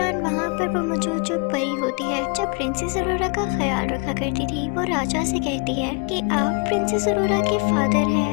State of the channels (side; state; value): right; quieter; 33.1 dB